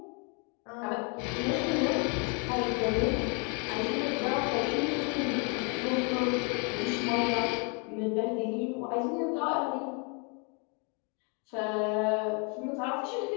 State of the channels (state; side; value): quieter; right; 35.8 dB